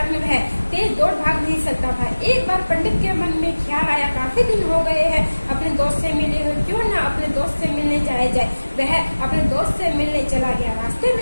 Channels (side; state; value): both; inverted; correlation -1.00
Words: वह तेज दौड़ भाग नहीं सकता था। एक बार पंडित के मन में ख्याल आया, काफी दिन हो गए हैं अपने दोस्त से मिले हुए, क्यों ना अपने दोस्त से मिलने जाया जाए। वह अपने दोस्त से मिलने चला गया। रास्ते